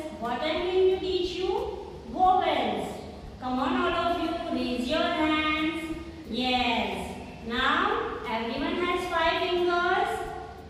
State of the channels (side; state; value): both; identical; correlation 1.00